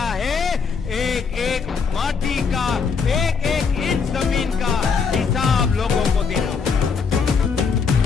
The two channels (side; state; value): right; quieter; 5.6 dB